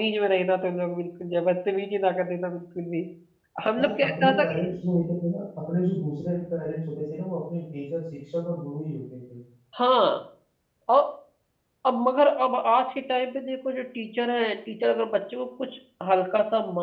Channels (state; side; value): identical; both; correlation 1.00